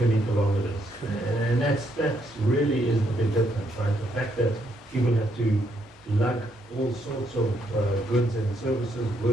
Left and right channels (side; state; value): both; normal; correlation 0.74